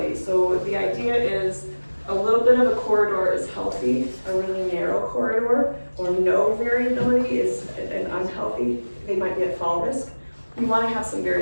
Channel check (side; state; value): both; inverted; correlation -1.00